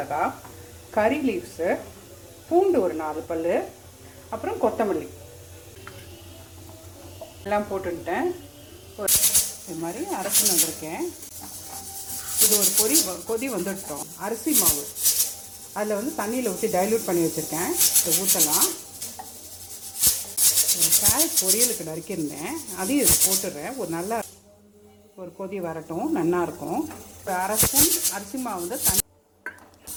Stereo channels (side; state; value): both; identical; correlation 1.00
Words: கறி லீவ்ஸு, பூண்டு ஒரு 4 பல், அப்புறம் கொத்தமல்லி எல்லாம் போட்டுட்டேன். இது மாதிரி அரைச்சின்னு வந்திருக்கேன். இது ஒரு கொதி வந்துட்டோம். அரிசி மாவு அதில் தண்ணியில் ஊற்றி டைல்யூட் பண்ணி வச்சுருக்கேன். இதை ஊற்றலாம். கேரட் பொரியலுக்கு நறுக்கியிருந்தேன், அதையும் இதில் போட்டுடுறேன். ஒரு கொதி வரட்டும், நல்லாயிருக்கும். இப்போ அரை ஸ்பூன் அரிசி மாவு தண்ணி